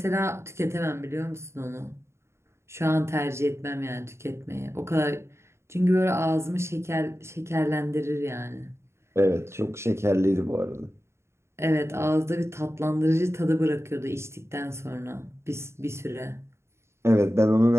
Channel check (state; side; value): late; left; 0.13 ms